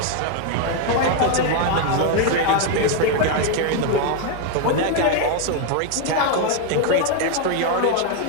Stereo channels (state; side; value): different; both; correlation 0.01